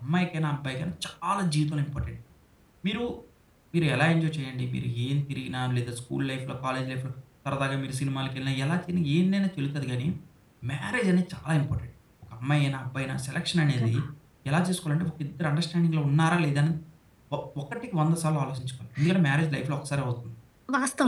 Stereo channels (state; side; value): identical; both; correlation 1.00